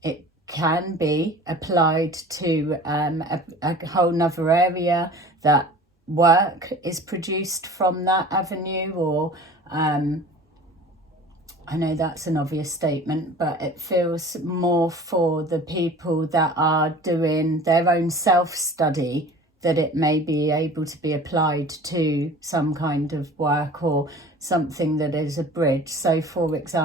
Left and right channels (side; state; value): both; normal; correlation 0.42